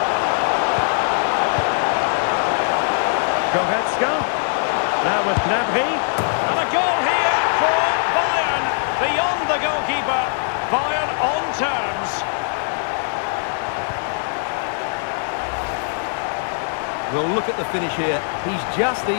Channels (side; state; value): right; silent; digital silence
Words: Goretzka. Now with Gnabry. And a goal here for Bayern. Beyond the goalkeeper. Bayern on terms. Well, look at the finish here. He's just